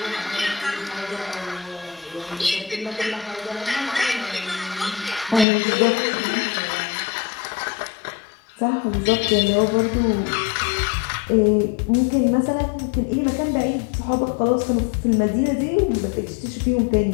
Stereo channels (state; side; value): drops out; right; at 5.5 s